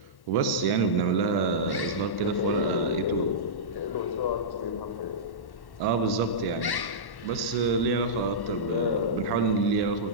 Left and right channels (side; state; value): right; late; 1.1 ms